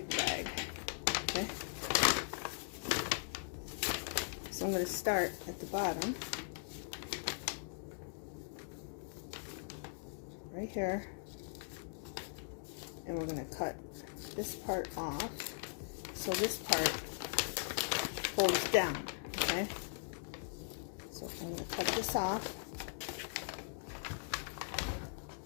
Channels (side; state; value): right; silent; digital silence